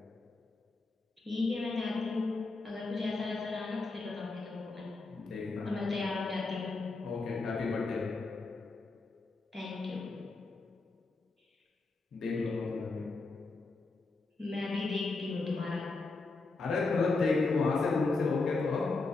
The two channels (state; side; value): quieter; right; 3.7 dB